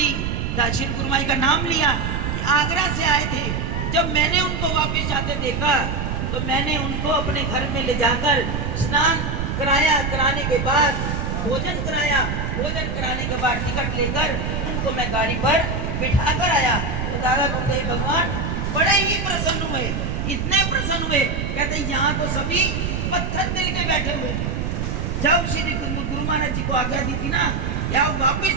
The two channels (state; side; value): noise; right; rumble, 2 dB below the sound